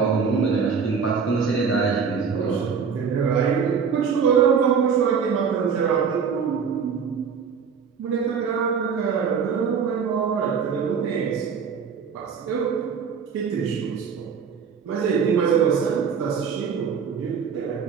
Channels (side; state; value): left; quieter; 6.4 dB